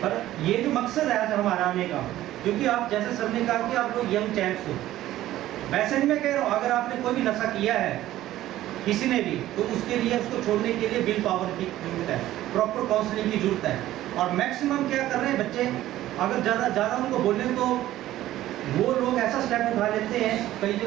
पर ये जो मकसद है आज हमारा आने का, क्योंकि आप जैसे सर ने कहा कि आप लोग यंग चैंप्स हो, वैसे नहीं मैं कह रहा हूँ, अगर आपने कोई भी नशा किया है किसी ने भी, तो उसके लिए उसको छोड़ने के लिए विल पावर की जरूरत है, प्रॉपर काउंसलिंग की जरूरत है। और मैक्सिमम क्या कर रहे हैं बच्चे, अगर ज़्यादा उनको बोलें तो वो लोग ऐसा स्टेप उठा लेते हैं, कई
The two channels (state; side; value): quieter; left; 14.3 dB